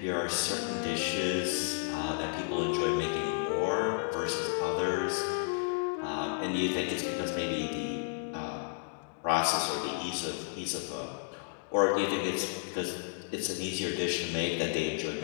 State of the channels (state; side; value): silent; right; digital silence